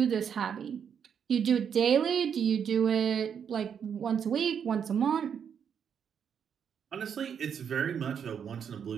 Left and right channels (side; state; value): left; quieter; 7.7 dB